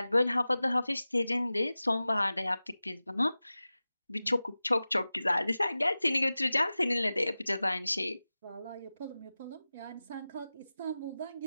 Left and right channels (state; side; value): inverted; both; correlation -0.96